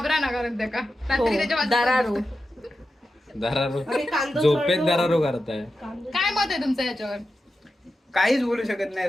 ना करत का हो, रात्री त्याच्या बाजूला- दरारो. दरारो आणि कांदा झोपेत तळलो. दरारो करताय. काय मत आहे तुमचं याच्यावर? काहीच बोलू शकत नाही,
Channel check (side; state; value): both; normal; correlation 0.91